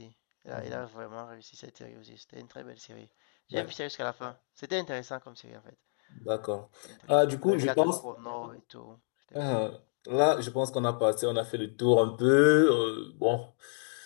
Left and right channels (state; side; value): silent; right; digital silence